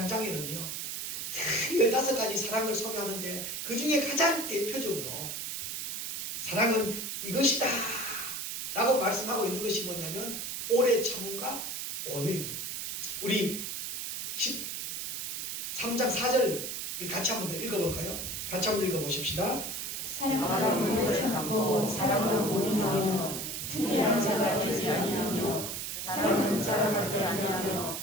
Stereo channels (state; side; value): noise; right; hiss, 5 dB below the sound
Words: 15가지 사랑을 소개하는데 그 중에 가장 대표적으로 사랑은 이것이다 라고 말씀하고 있는 것이 뭐냐면 오래 참음과 온유입니다. 우리 13장 4절 우리 같이 한번 더 읽어볼까요? 같이 한번 읽어보십시다. 사랑은 오래 참고 사랑은 온유하며 특별한 자가 되지 아니하며 사랑은 자랑하지 아니하며